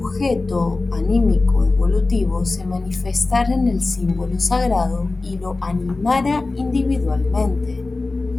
anímico evolutivo, se manifestara en el símbolo sagrado y lo animara individualmente.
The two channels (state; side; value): quieter; right; 3.4 dB